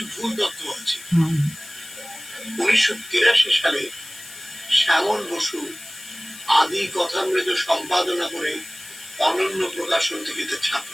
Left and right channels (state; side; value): noise; left; hiss, 16 dB below the sound